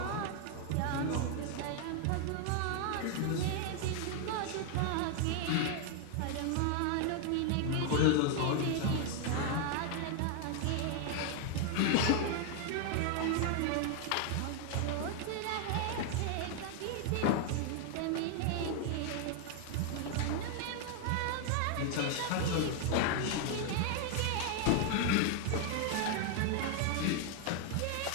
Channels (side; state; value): both; different; correlation 0.00